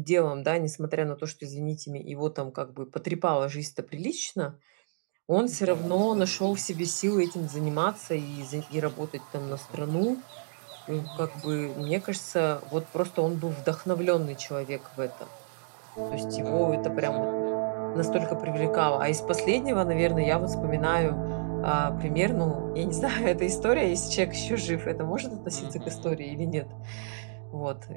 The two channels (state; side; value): silent; left; digital silence